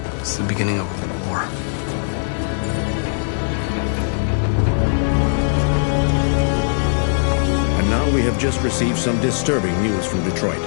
It's the beginning of a war. And now we have just received some disturbing news from Detroit.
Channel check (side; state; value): right; silent; digital silence